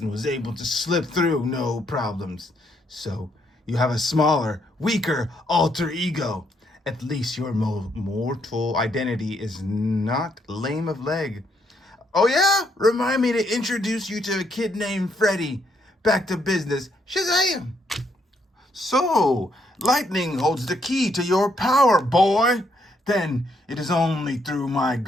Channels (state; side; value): normal; both; correlation 0.73